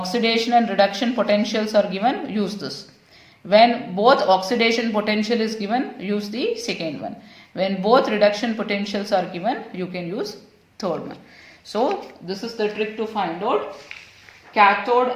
and reduction potentials are given, use this. When both oxidation potential is given, use the second one. When both reduction potentials are given, you can use third one. So this is the trick to find out cathode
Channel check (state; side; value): identical; both; correlation 1.00